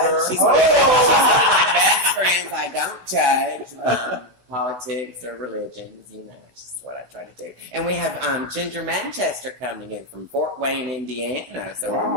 She's one of my best friends. I don't judge politics or religions. It's just what I try to do. And we have Ginger Manchester coming in from Fort Wayne, Indiana. So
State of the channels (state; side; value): late; left; 16 ms